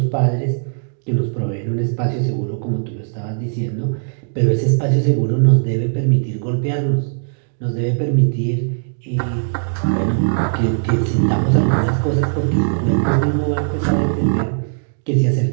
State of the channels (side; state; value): left; silent; digital silence